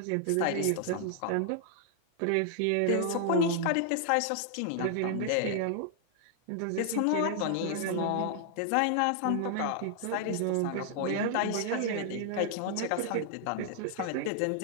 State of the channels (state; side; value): different; both; correlation 0.00